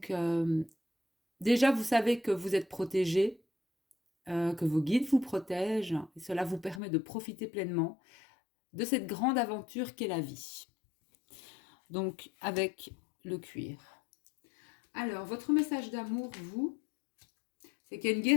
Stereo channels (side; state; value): right; drops out; at 6.8 s